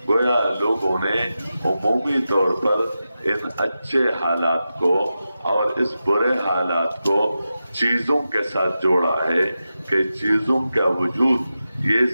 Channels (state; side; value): inverted; both; correlation -0.91